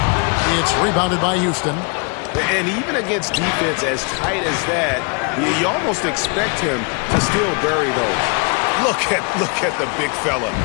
It's rebounded by Houston. And even against defense as tight as that, you almost expect him to still bury those. Look at the big fella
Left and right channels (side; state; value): right; quieter; 34.7 dB